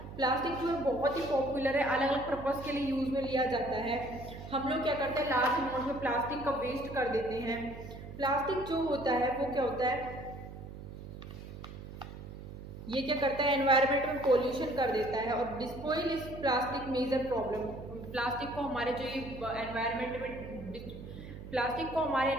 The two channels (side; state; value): right; noise; hum, 12 dB below the sound